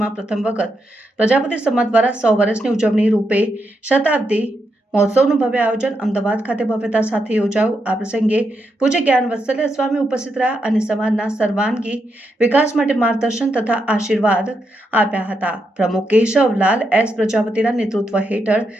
પ્રથમ વખત પ્રજાપતિ સમાજ દ્વારા 100 વર્ષની ઉજવણી રૂપે શતાબ્દી મહોત્સવનું ભવ્ય આયોજન અમદાવાદ ખાતે ભવ્યતા સાથે યોજાયું। આ પ્રસંગે પૂજ્ય જ્ઞાન વત્સલ્ય સ્વામી ઉપસ્થિત રહ્યા અને સમાજના સર્વાંગી વિકાસ માટે માર્ગદર્શન તથા આશીર્વાદ આપ્યા હતા। પ્રમુખ કેશવલાલ એસ પ્રજાપતિના નેતૃત્વ હેઠળ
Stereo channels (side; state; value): both; normal; correlation 0.83